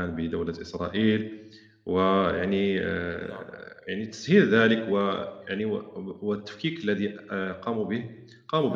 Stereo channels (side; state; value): both; identical; correlation 1.00